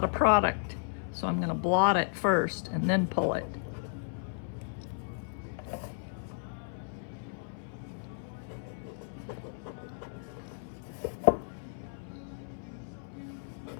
of product. So I'm gonna blot it first and then pull it.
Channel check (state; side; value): silent; right; 55 dB below the other